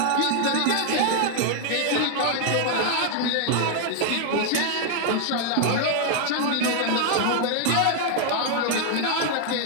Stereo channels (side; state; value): both; different; correlation 0.00